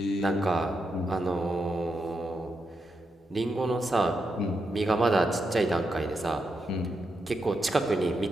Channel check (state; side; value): normal; both; correlation 0.84